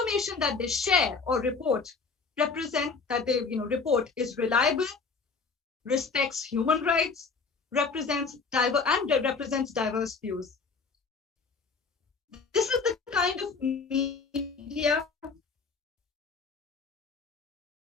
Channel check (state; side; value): quieter; right; 4.8 dB